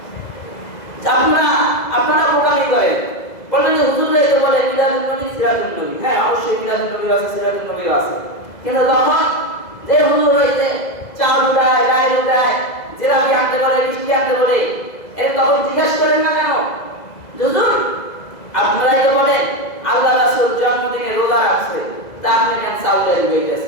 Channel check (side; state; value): right; late; 2.0 ms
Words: আপনারা বোকামি করেন, বলেন যে হুজুর এই তো বলে মিলাদুন নবী, সিরাতুন নবী। হ্যাঁ, অবশ্যই মিলাদুন নবী আছে, সিরাতুন নবী আছে, কিন্তু তখন যে হুজুর হইতে চাউল উঠায়, ডাল উঠায়, জিলাপি আনতে বলে, মিষ্টি আনতে বলে, এর তখন জিজ্ঞাসা করেন না কেন? হুজুর আপনারাই তো বলেন আল্লাহ রাসূল জন্মদিনে রোজা রাখছে, তা আপনি কেন চাউলের